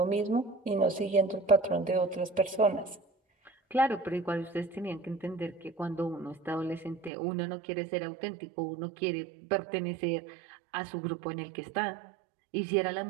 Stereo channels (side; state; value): left; drops out; at 7.1 s